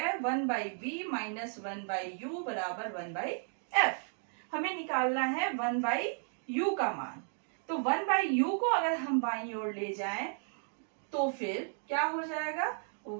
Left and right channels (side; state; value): left; silent; 55 dB below the other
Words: 1/b - 1/u बराबर 1/f। हमें निकालना है 1/u का मान, तो 1/u को अगर हम बाईं ओर ले जाएं तो फिर क्या हो जाएगा,